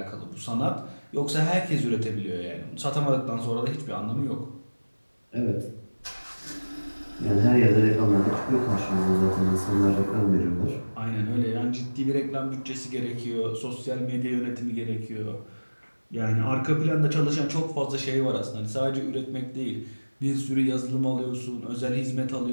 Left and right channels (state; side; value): inverted; both; correlation -1.00